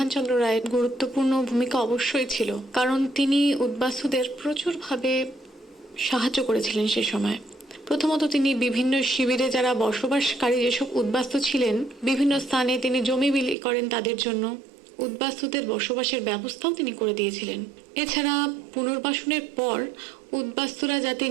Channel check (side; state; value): left; drops out; at 13.6 s